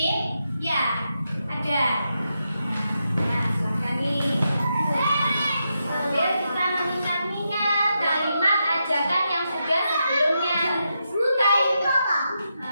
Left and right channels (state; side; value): inverted; both; correlation -0.85